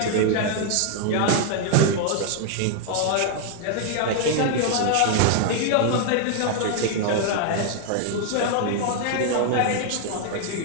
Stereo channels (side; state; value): both; different; correlation 0.00